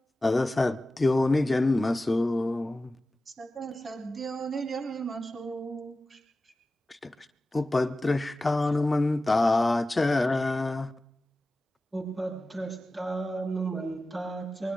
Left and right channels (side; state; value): both; normal; correlation 0.95